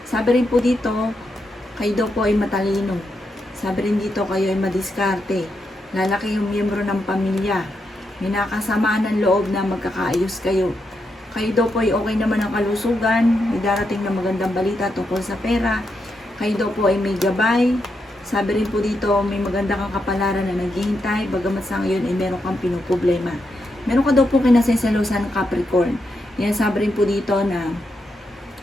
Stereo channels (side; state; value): both; normal; correlation 0.83